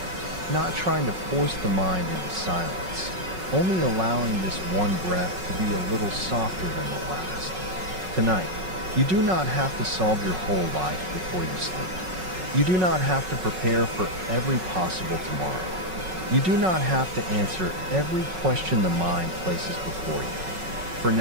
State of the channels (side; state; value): left; late; 5.4 ms